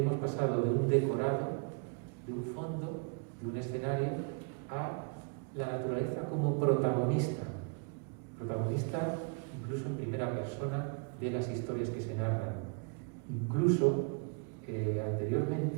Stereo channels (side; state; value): left; quieter; 36.9 dB